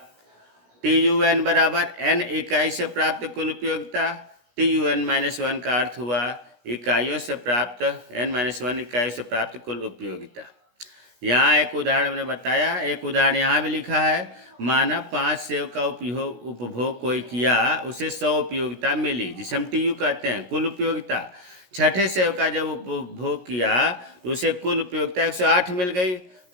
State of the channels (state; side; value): late; left; 17 ms